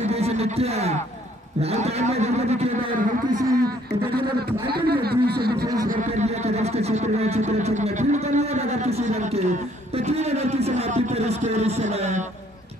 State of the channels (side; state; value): both; normal; correlation 0.63